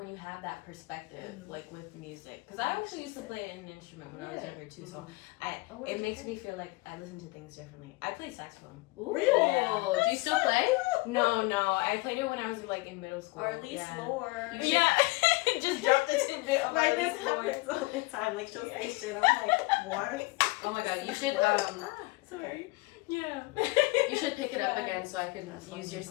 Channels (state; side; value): quieter; right; 23.6 dB